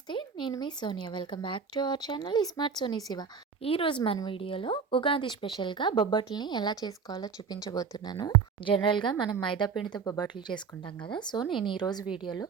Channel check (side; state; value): left; quieter; 5.9 dB